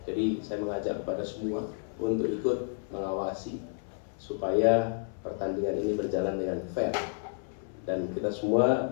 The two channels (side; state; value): right; silent; 55 dB below the other